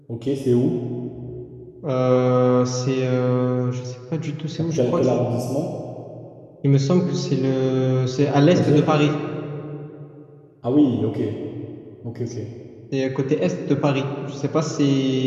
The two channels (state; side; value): identical; both; correlation 1.00